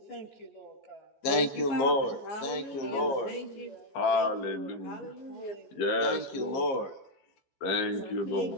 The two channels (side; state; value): right; late; 15 ms